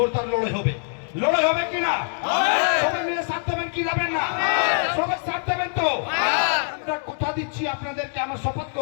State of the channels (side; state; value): right; silent; 63 dB below the other